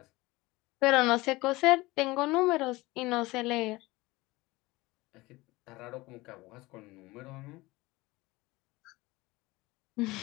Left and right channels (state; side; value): quieter; right; 20.9 dB